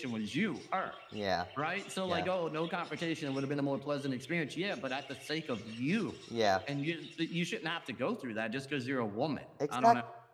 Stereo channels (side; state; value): both; identical; correlation 1.00